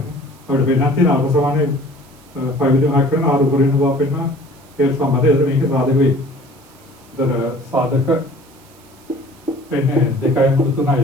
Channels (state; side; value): noise; right; hiss, 28 dB below the sound